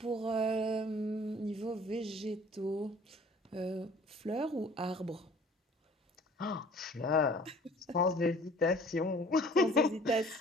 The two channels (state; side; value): normal; both; correlation 0.51